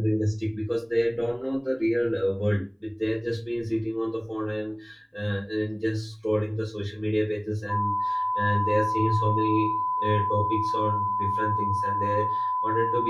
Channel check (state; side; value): identical; both; correlation 1.00